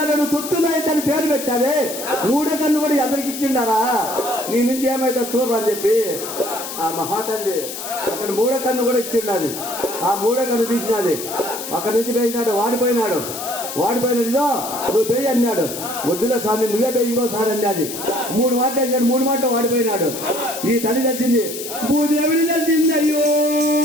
నువ్వు తొత్తులైతే అని పేరు పెట్టావే, 3వ కన్ను కూడా ఎదరికి ఇచ్చిండారా, నీ నుంచి ఏమైతే చూడరు అని చెప్పి ఆ మహాతల్లి అక్కడ 3వ కన్ను కూడా ఇచ్చిండాది. ఆ 3వ కన్ను తీసినది. అక్కడి నుంచి పోయినాడు, వాడిపోయినాడు. ఇదో నువ్వు పేయి అన్నాడు. వద్దులే స్వామి, నువ్వే పేయి ఇంకోసారి అన్నది. 3 మాటలు వేసాడు, 3 మాటలు వాడిపోయినాడు. ఈ తల్లి తెలిసింది, భూదేవిని తెలిసింది. అయ్యో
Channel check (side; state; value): left; noise; hiss, 8 dB below the sound